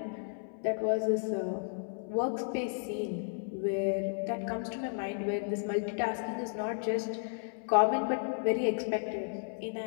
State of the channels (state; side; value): silent; right; 56 dB below the other